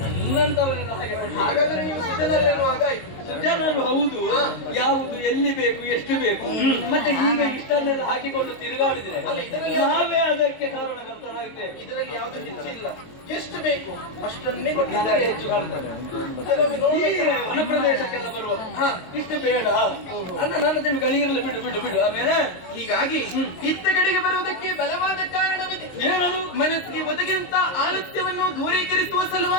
ನನ್ನಂತವರೆಲ್ಲ ಹಾಗೆ ಮಾಡ್ತಾರೆ. ಹಾಗಾದ್ರೆ ನೀವು ಸಿದ್ಧನಲ್ಲೆನ್ನುವಾಗ ಆಯ್ತು. ಜನರು ಹೌದು, ಯಾವುದು ಎಲ್ಲಿ ಬೇಕು ಎಷ್ಟು ಬೇಕು, ಮತ್ತೆ ಈಗ ಇಷ್ಟನ್ನೆಲ್ಲ ಹಾಕಿಕೊಂಡು ತಿರುಗಾಡಿದ್ರೆ ಅಲ್ಲ, ಇದರಲ್ಲಿ ನಾವೇ ಅದಕ್ಕೆ ಕಾರಣಕರ್ತರಾಗಿದ್ದೇವೆ. ಇದರಲ್ಲಿ ಯಾವ್ದು ಹೆಚ್ಚಿಲ್ಲ, ಎಷ್ಟು ಬೇಕು ಅಷ್ಟನ್ನೇ ನನಗೆ ಕೊಟ್ಟಿದ್ದಾರೆ. ಹೆಚ್ಚು ಕಾಣ್ತದೆ. ಕೆಲವೊಮ್ಮೆ ಈ ನೋಡಿ ವನ ಪ್ರದೇಶಕ್ಕೆಲ್ಲ ಬರುವ ಇಷ್ಟು ಬೇಡ ಅನ್ನ ನನ್ನ ತಿಳು ಗಳಿರಲಿ, ಬಿಡು ಬಿಡು ಬಿಡು. ಆಮೇಲೆ ಹೀಗಾಗಿ ಇತ್ತ ಕಡೆಗೆ ಬರುವುದಕ್ಕೆ ಬಲವಾದ ಕಾರಣವಿದೆ. ಏನದು? ಮನಸ್ಸಿಗೆ ಒದಗಿದಂತ ಆಲಸ್ಯವನ್ನು ದೂರೀಕರಿಸುವ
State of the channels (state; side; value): late; right; 22 ms